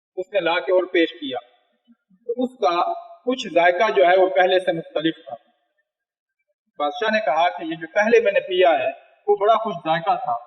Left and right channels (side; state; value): both; identical; correlation 1.00